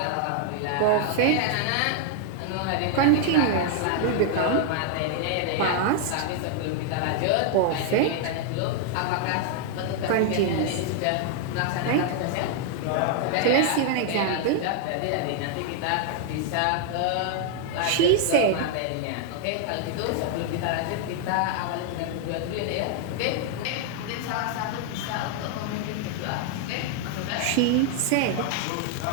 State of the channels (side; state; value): both; different; correlation 0.00